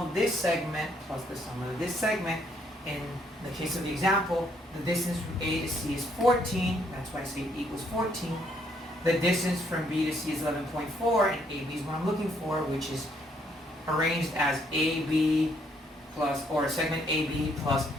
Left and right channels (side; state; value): both; normal; correlation 0.70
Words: of this segment plus the sum of this segment. In the case of the example, the distance from A to C is 14, that's why I say it equals 14. The distance from B to C is 11.4, and AB is what I'm looking for, which is arranged as AB plus, or segment AB plus